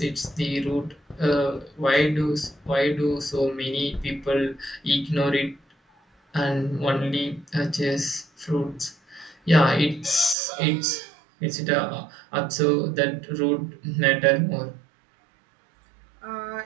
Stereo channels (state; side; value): drops out; left; at 10.4 s